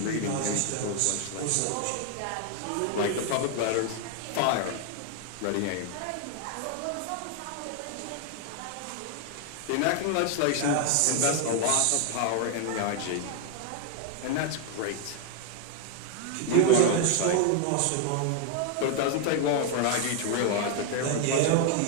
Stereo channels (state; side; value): different; both; correlation 0.00